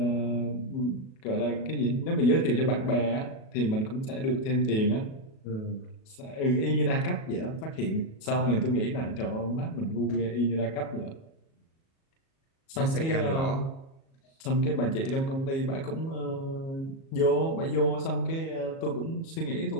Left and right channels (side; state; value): right; late; 37 ms